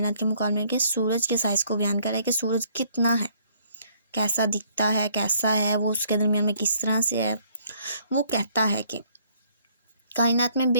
के मुकाबले में सूरज के साइज़ को बयान करा है कि सूरज कितना है, कैसा दिखता है, कैसा है वो, उसके दरमियान में किस तरह से है। वो कहता है कि कायनात में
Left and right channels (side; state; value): both; inverted; correlation -0.63